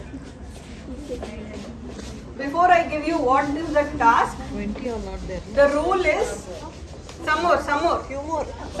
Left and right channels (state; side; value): identical; both; correlation 1.00